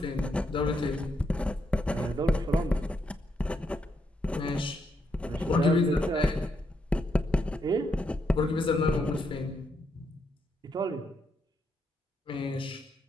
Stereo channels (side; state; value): both; normal; correlation 0.79